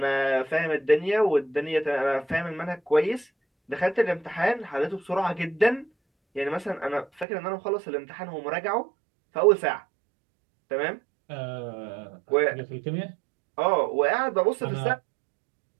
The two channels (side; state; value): left; drops out; at 7.2 s